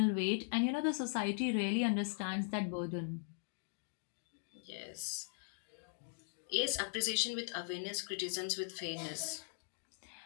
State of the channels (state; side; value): silent; right; digital silence